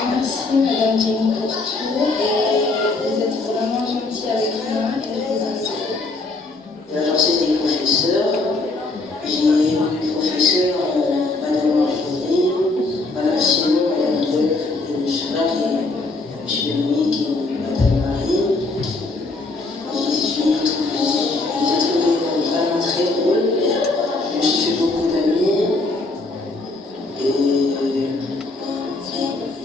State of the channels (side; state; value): right; quieter; 3.3 dB